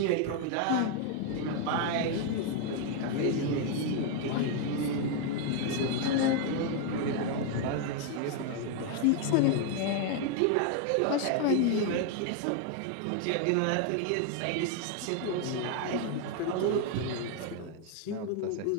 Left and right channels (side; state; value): both; different; correlation 0.00